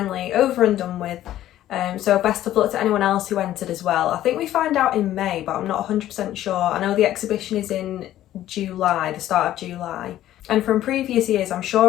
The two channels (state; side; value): quieter; right; 13.2 dB